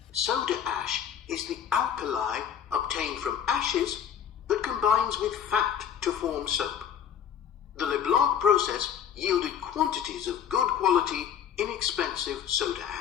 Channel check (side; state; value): right; quieter; 8.7 dB